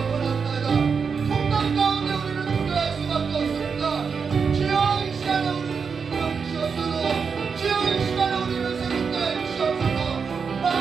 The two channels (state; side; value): quieter; left; 5.8 dB